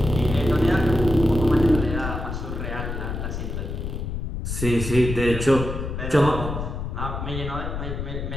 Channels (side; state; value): left; noise; rumble, 5 dB below the sound